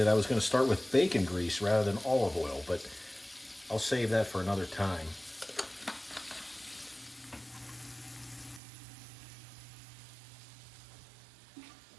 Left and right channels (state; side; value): drops out; left; at 8.6 s